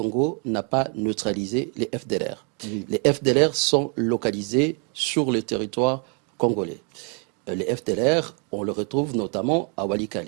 n'a pas neutralisé les FDLR. Oui. Les FDLR sont localisés sur le territoire congolais. Les FDLR, on le retrouve notamment à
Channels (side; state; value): left; quieter; 37.4 dB